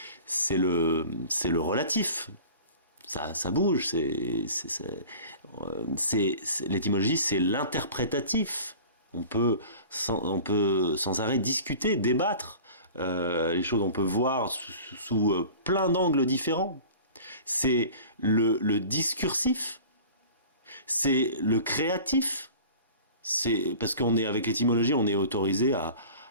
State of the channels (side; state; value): both; inverted; correlation -0.41